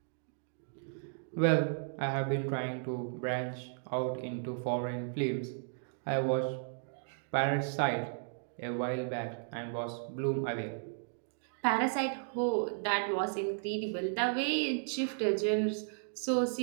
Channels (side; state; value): left; silent; digital silence